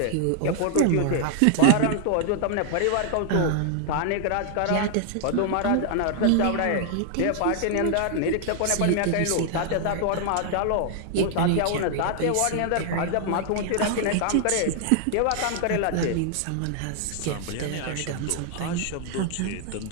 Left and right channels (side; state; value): both; different; correlation 0.00